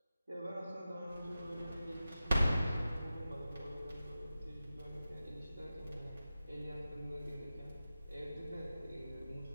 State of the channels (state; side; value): inverted; both; correlation -0.93